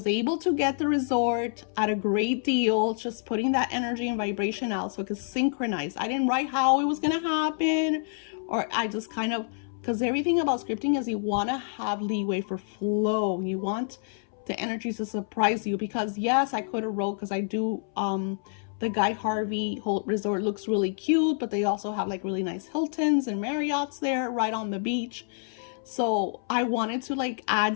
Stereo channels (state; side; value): silent; right; 60 dB below the other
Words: able to get the resort at a great deal, just putting that energy and vibration out so it could synchronize. I didn't write how it was going to happen, or I just kind of, because everything about scripting is you want to have leeway for flow. You want the energy to surprise you, because yes, I could have wrote, because I do, the Guy Harvey resort looks really cute, but they also have like really nice Hiltons and Marriotts there right on the beach. So I wanted to like